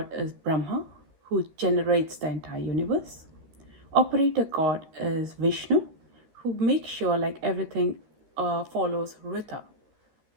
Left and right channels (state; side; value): late; left; 13 ms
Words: is Brahma, who generates the entire universe. Operator God is Vishnu, who makes sure like everything follows Rita.